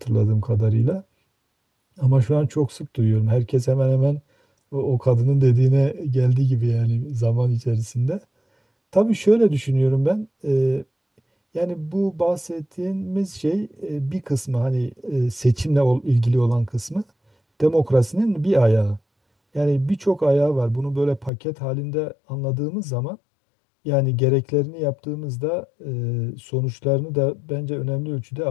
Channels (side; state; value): right; drops out; at 21.3 s